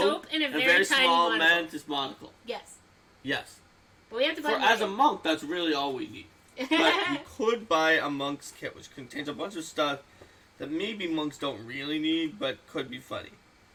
and a very very tiny small monocle. mantis monocle. Yes. Yes. But we have to buy As a monk, that's really all we need. But we could buy a monk's kit, which contains a bunch of stuff that maybe monks don't really need, but could be funny.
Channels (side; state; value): both; identical; correlation 1.00